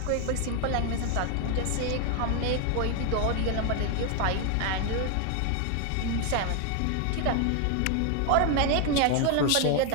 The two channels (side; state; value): both; different; correlation 0.01